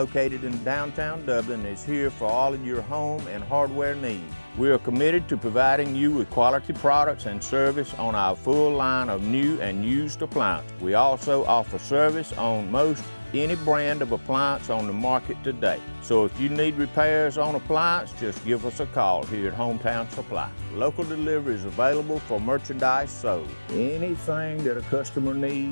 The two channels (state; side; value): inverted; both; correlation -1.00